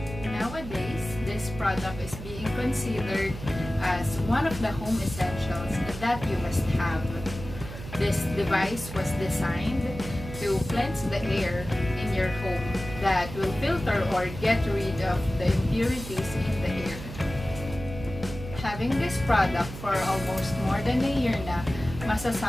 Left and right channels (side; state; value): right; noise; hum, 11 dB below the sound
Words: Nowadays, this product is being considered as one of the home essentials that you must have. This device was designed to cleanse the air in your home that will filter or get rid of the impurities in the air. Having this product for almost more than a year na,